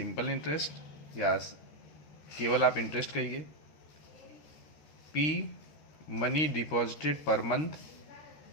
इंटरेस्ट या केवल आप इंटरेस्ट कहिए, P money deposited per month,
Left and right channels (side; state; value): right; late; 13 ms